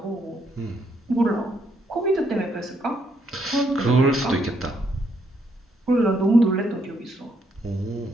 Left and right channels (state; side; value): normal; both; correlation 0.74